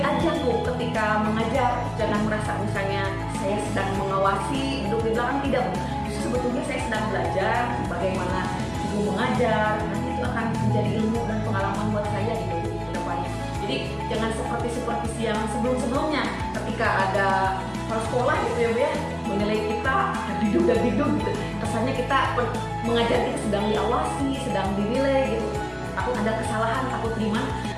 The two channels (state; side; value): identical; both; correlation 1.00